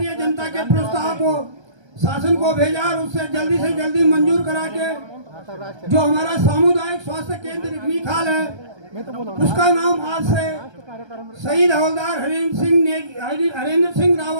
जनता के प्रस्ताव को शासन को भेजा और उससे जल्दी से जल्दी मंजूर करा के जो हमारा सामुदायिक स्वास्थ्य केंद्र रिखनी खाल है उसका नाम आज से शहीद हवलदार हरेंद्र सिंह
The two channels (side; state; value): left; late; 1.3 ms